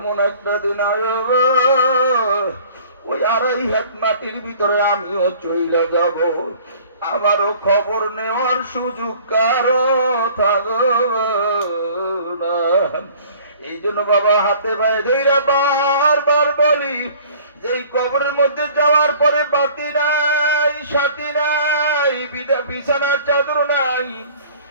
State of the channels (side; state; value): both; inverted; correlation -0.50